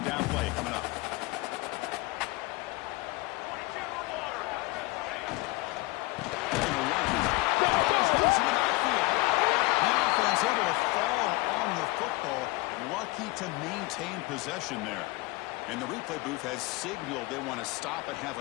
down play coming up. Able to fall on the football, lucky to maintain possession there. And the replay booth has signaled they want to stop and have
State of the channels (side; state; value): right; quieter; 22.2 dB